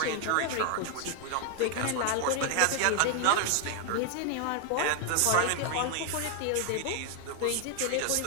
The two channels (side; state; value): both; different; correlation 0.00